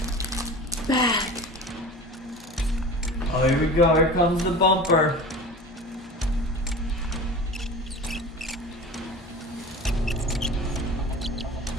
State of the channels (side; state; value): both; normal; correlation 0.36